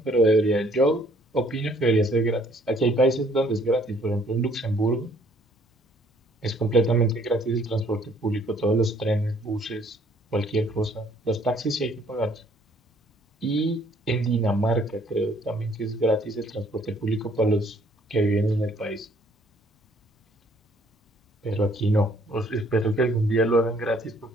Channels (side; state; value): both; normal; correlation 0.62